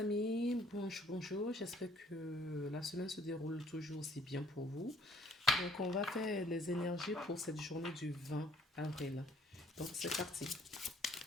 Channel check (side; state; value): both; normal; correlation 0.59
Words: bonjour, j'espère que la semaine se déroule toujours aussi bien pour vous. Donc on va faire les énergies pour cette journée du 20 avril. Donc c'est parti.